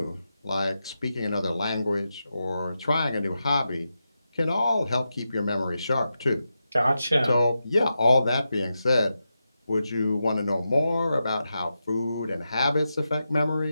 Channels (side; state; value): both; inverted; correlation -0.89